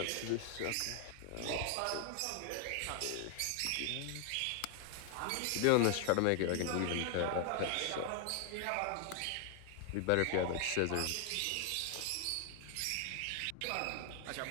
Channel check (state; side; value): different; both; correlation 0.00